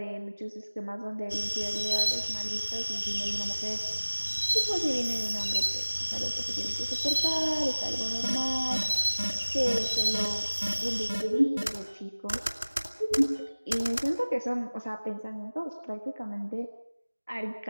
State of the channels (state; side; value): inverted; both; correlation -1.00